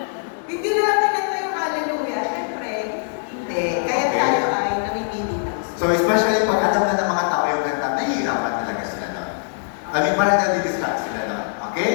Hindi na lang kinanta yung hallelujah. Siyempre, hindi. Kaya tayo ay namimili ng so especially pag alam na ng mga tao yung kanta, nahihirapan talaga sila doon. I mean, parang nadi-distract sila doon. Okay?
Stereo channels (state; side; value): silent; right; digital silence